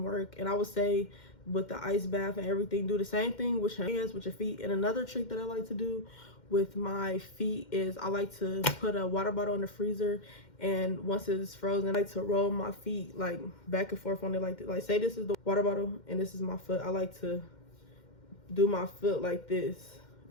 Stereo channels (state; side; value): late; right; 2.1 ms